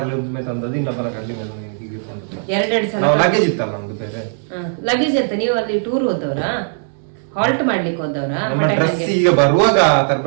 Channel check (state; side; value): silent; left; digital silence